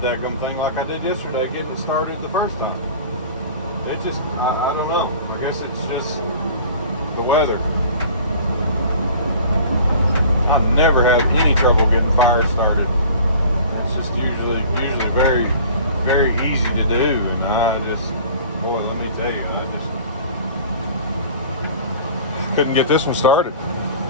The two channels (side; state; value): both; inverted; correlation -0.44